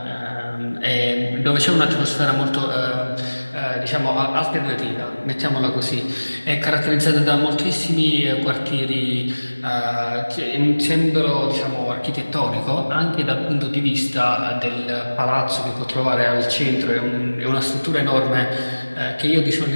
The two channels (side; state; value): both; inverted; correlation -1.00